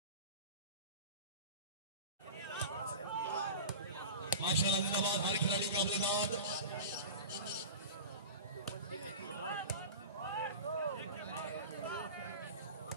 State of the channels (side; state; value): both; inverted; correlation -0.32